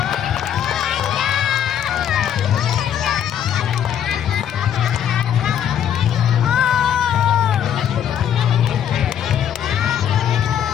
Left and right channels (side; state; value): right; quieter; 9.5 dB